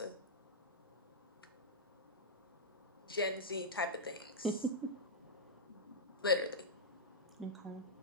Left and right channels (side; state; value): both; normal; correlation -0.09